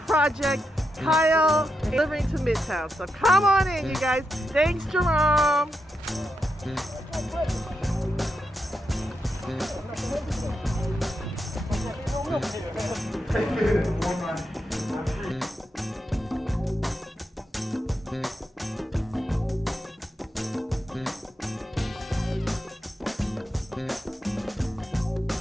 Project Kyle delivering to Midtown. So come on in, you guys. Thanks, Jerome.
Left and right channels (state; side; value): normal; both; correlation 0.84